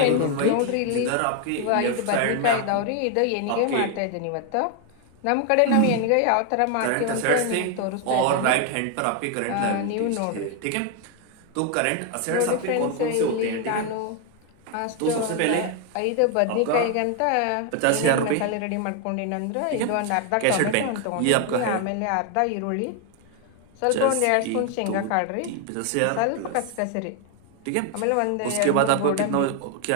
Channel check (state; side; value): different; both; correlation 0.01